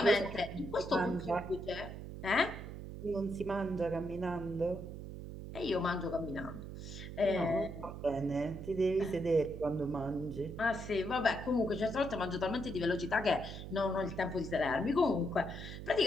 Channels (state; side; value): noise; right; hum, 9 dB below the sound